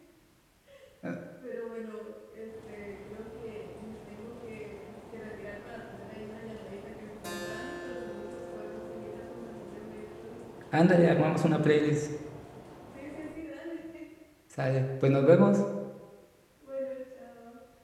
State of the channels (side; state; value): both; identical; correlation 1.00